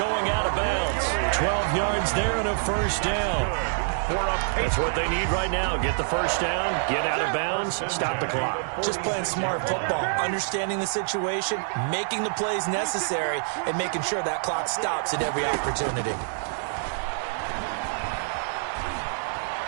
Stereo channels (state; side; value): silent; left; digital silence